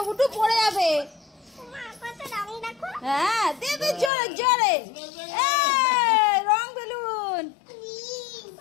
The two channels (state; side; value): drops out; right; at 4.1 s